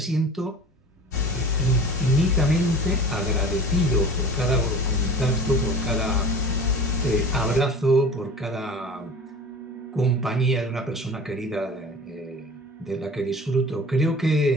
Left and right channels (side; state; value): both; normal; correlation 0.39